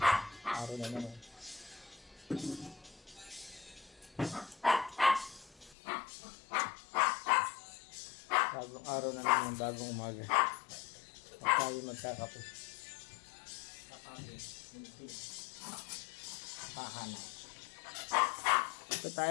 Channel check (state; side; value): drops out; right; at 5.8 s